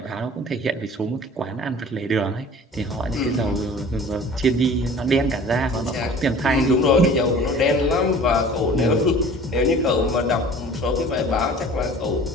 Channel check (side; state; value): both; normal; correlation 0.45